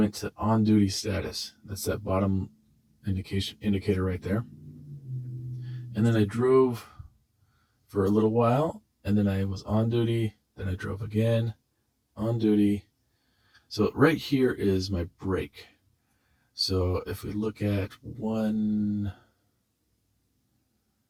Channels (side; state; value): both; identical; correlation 1.00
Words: to on-duty status. That's that bottom indicator right there. And then I drove for a little while, and then I was on duty. Then I drove again, on duty. So right here is my break. So if we look at one,